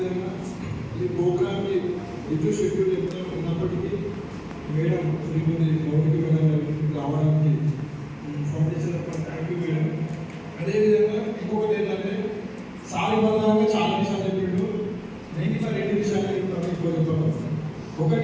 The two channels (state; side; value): identical; both; correlation 1.00